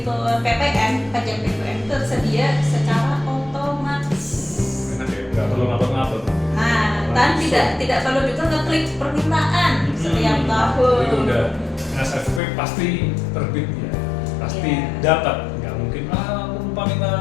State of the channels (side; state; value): right; drops out; at 12.4 s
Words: PPN, pajak PPN tersedia secara otomatis. Enak ya, nggak perlu ngapet-ngapet. Nah, dan tidak perlu juga ngeklik permintaan setiap tahun. Itu udah NSFP pasti terbit ya, pasti dapat. Nggak mungkin aku lupa minta